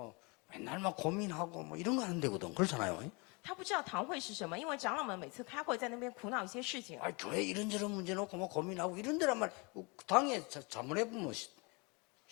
맨날 막 고민하고 뭐 이런 거 하는 데거든. 그렇잖아요. 他不知道堂会是什么，因为长老们每次开会在那边苦恼一些事情。 아, 교회 이런저런 문제 놓고 뭐 고민하고 이런 데란 말 당해 자문해보면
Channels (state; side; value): quieter; right; 29.5 dB